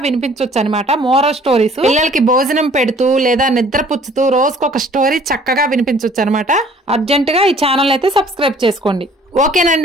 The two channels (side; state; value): both; normal; correlation 0.55